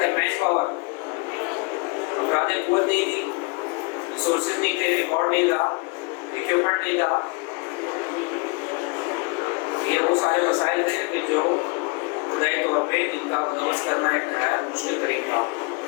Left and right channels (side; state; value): right; quieter; 29.5 dB